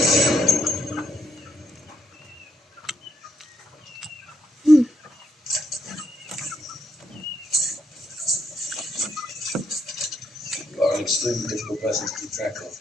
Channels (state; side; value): normal; both; correlation 0.77